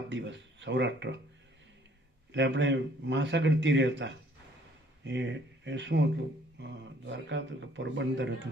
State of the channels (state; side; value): normal; both; correlation 0.60